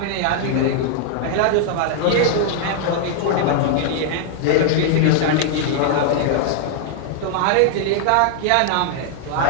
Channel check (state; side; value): different; both; correlation -0.01